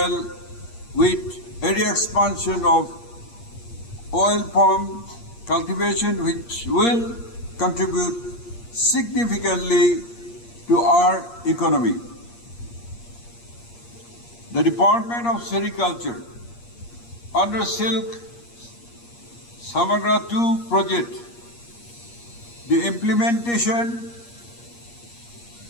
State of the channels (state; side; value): late; right; 8.5 ms